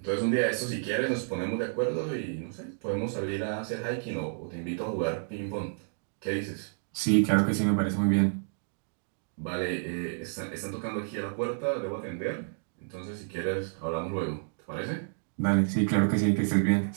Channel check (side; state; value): left; silent; digital silence